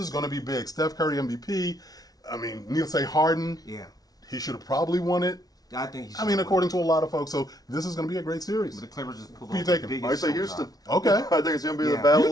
going to be big. Steph Curry MVP. I mean, needless to say, Harden, Yeah. he should have probably won it. I think. I mean, according to a lot of folks. So this is going to be a great series. But the Clippers just pulled Who you off the taking? biggest I say choke Houston. job. Okay. I think it's going to be Yeah. the battle You're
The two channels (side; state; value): right; late; 0.18 ms